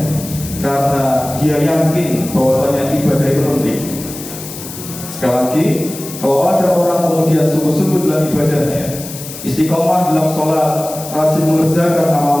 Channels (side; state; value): left; noise; hiss, 12 dB below the sound